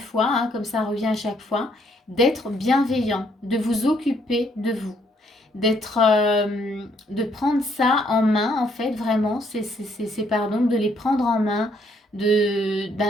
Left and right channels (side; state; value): both; normal; correlation 0.69